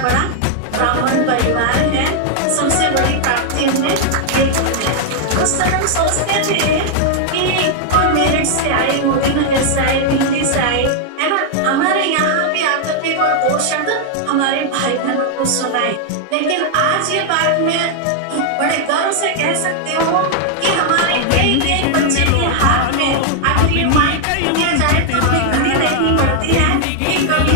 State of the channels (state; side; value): different; both; correlation 0.00